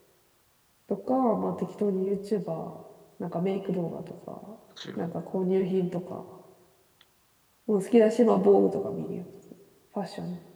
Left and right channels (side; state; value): both; identical; correlation 1.00